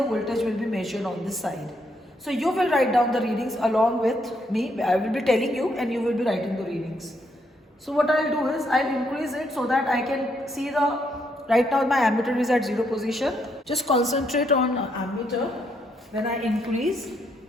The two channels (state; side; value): normal; both; correlation 0.75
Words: voltage will be measured on this side. So you will write down the readings along with me. I will be telling you and you will be writing the readings. So what I'll do is, I'll increase it so that I can see the, right now my ammeter is at 0 position. Just concentrate on ammeter when I increase,